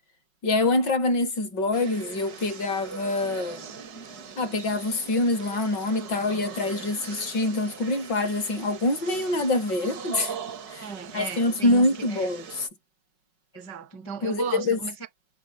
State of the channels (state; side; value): late; right; 5.4 ms